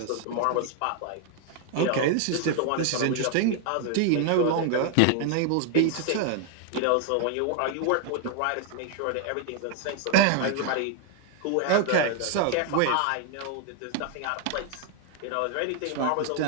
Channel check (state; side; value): different; both; correlation 0.01